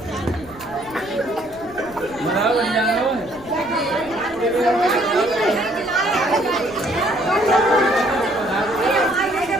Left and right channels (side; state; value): right; noise; rumble, 23 dB below the sound